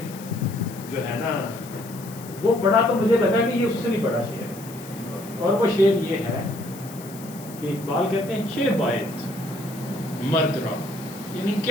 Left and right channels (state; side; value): noise; left; hiss, 17 dB below the sound